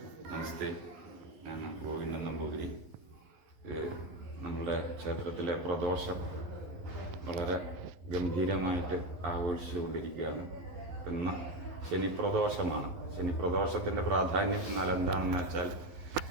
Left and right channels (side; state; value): left; late; 11 ms